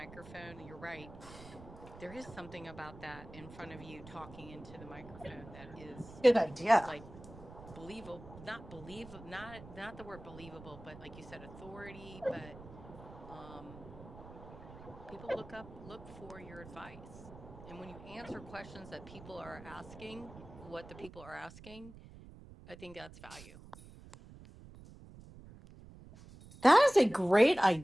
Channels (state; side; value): noise; right; rumble, 16 dB below the sound